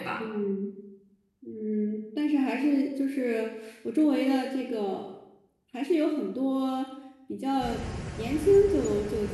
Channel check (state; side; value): identical; both; correlation 1.00